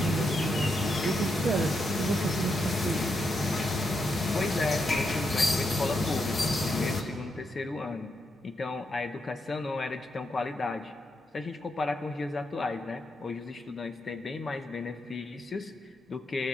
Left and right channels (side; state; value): both; normal; correlation 0.82